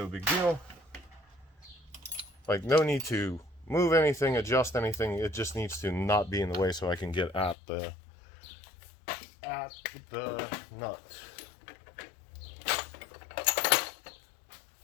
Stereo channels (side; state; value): right; drops out; at 7.6 s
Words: big deal. Like, no need to move anything, adjust anything, it just needs to not be in the way so I can get at the nut.